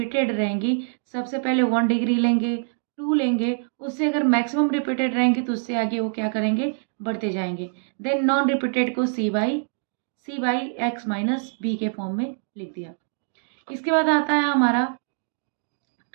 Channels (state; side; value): silent; left; digital silence